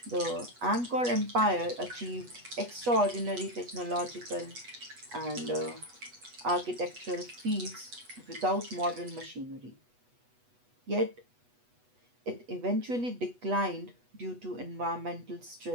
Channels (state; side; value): late; left; 8.2 ms